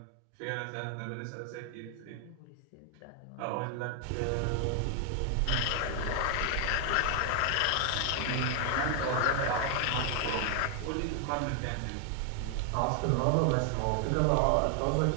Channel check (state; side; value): different; both; correlation 0.00